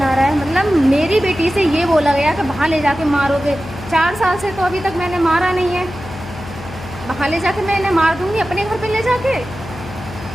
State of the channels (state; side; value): noise; left; hum, 14 dB below the sound